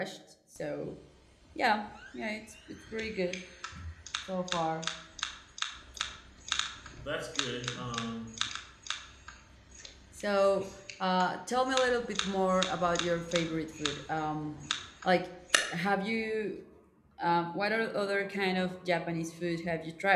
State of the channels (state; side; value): identical; both; correlation 1.00